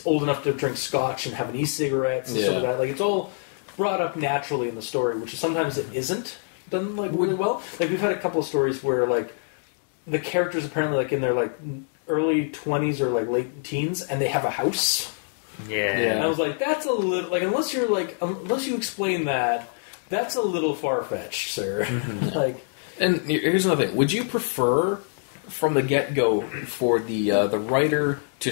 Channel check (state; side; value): silent; right; digital silence